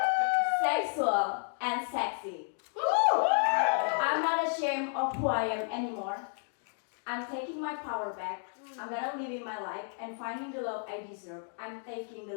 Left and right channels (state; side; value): silent; right; 56 dB below the other